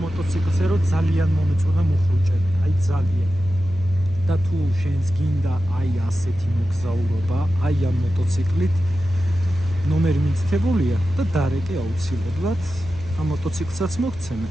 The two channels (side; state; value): left; noise; hum, 18 dB below the sound